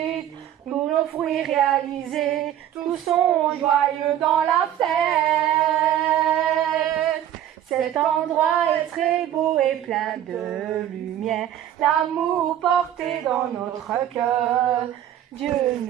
pour nos fruits réalisés. Tous sont joyeux dans la fête. Cet endroit est très beau et plein de lumière, l'amour porté dans notre cœur. Dieu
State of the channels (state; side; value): quieter; left; 11.2 dB